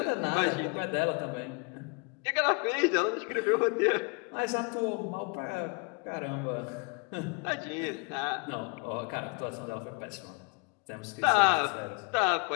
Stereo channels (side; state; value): right; quieter; 32.9 dB